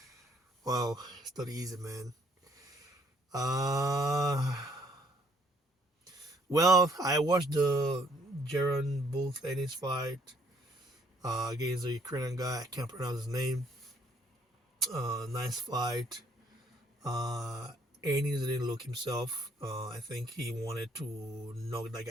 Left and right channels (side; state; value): both; normal; correlation 0.64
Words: Wow, it's not easy, man. Well, I watched the Jaron Booth Ennis fight against the Ukrainian guy. I can't pronounce his name. Nice fight. Ennis didn't look himself. I think he wanted to knock that